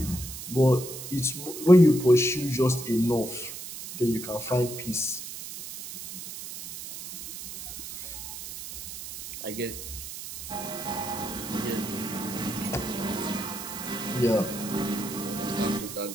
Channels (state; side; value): noise; right; hiss, 10 dB below the sound